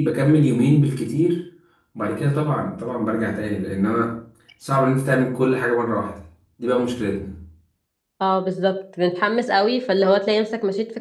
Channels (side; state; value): both; identical; correlation 1.00